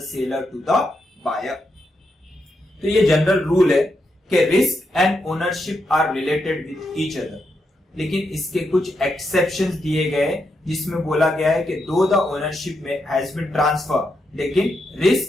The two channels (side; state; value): both; normal; correlation 0.83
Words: seller to the buyer. तो ये general rule है कि risk and ownership are related with each other. लेकिन इसके कुछ exceptions दिए गए जिसमें बोला गया है कि दो द ओनरशिप में हैज बीन ट्रांसफर, लेकिन